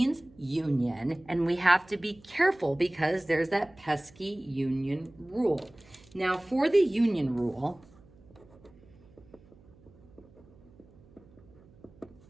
union, and we have to be careful because there's that pesky union rule. Now, for the union rule,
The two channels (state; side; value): noise; right; hum, 26 dB below the sound